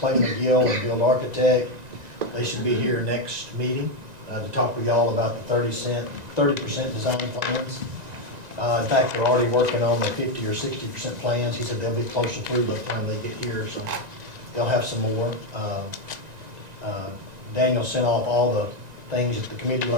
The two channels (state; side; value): late; left; 1.9 ms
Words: McGill and Build Architect. They should be here next meeting to talk with y'all about the 30% design plans. In fact, they're already working on the 50 or 60% plans. He said they'll be closer through by the time they get here, so they'll have some more. Daniel sent off all the things that the committee